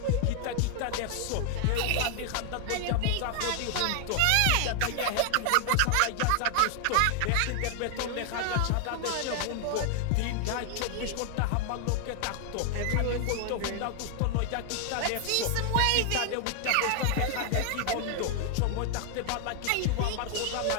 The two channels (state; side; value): different; both; correlation 0.00